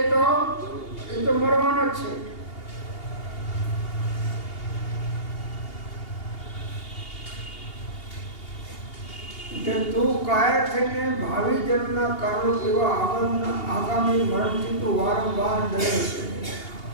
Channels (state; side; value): late; right; 2.8 ms